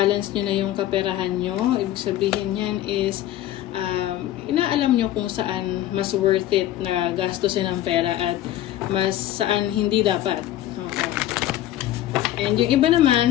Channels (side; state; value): right; quieter; 13.2 dB